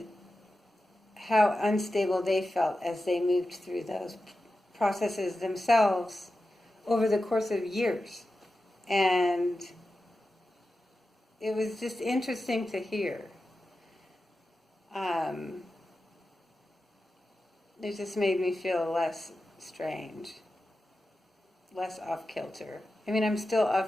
how unstable they felt as they moved through those processes themselves over the course of years. And it was just interesting to hear. It just made me feel less strange, less off-kilter. I mean, I'm still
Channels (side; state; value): both; normal; correlation 0.92